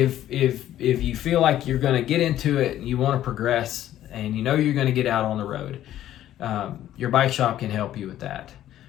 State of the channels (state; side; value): quieter; right; 12.5 dB